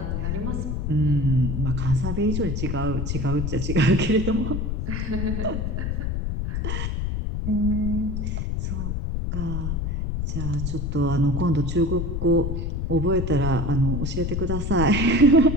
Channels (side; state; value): left; noise; rumble, 1 dB below the sound